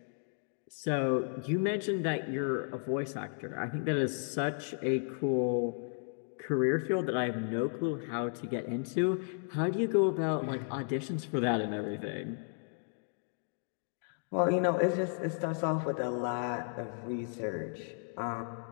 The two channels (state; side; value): silent; right; 55 dB below the other